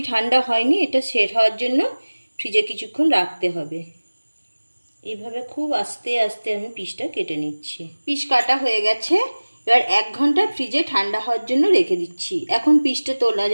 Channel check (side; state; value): both; inverted; correlation -1.00